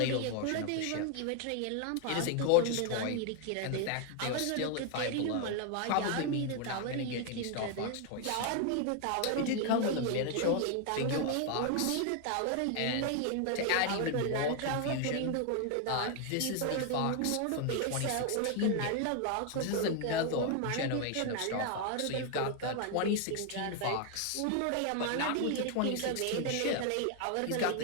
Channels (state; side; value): different; both; correlation 0.00